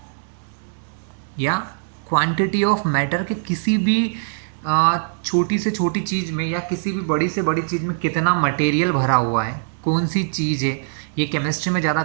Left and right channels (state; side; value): silent; left; digital silence